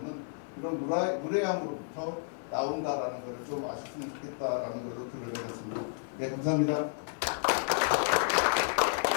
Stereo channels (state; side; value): silent; right; 57 dB below the other